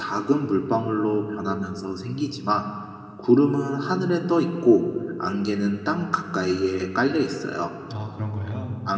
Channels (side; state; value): both; identical; correlation 1.00